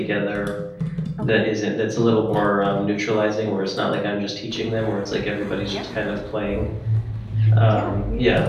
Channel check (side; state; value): both; identical; correlation 1.00